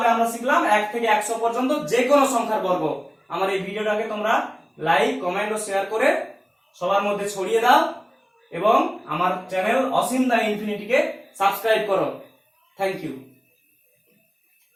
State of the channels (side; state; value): both; identical; correlation 1.00